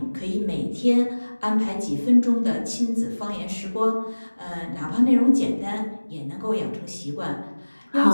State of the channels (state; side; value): inverted; both; correlation -1.00